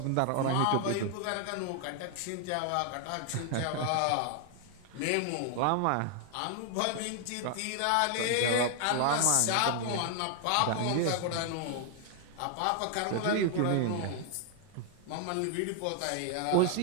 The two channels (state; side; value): different; both; correlation 0.00